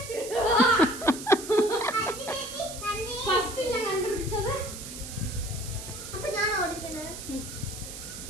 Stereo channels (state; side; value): noise; right; hiss, 10 dB below the sound